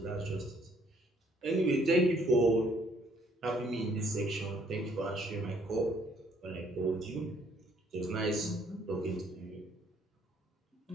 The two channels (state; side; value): normal; both; correlation 0.65